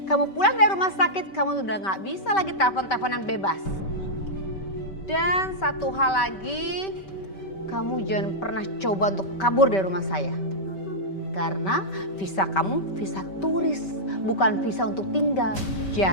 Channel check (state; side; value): late; right; 5.2 ms